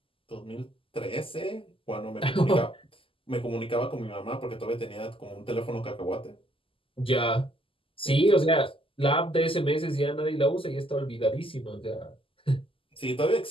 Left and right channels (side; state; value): right; late; 0.26 ms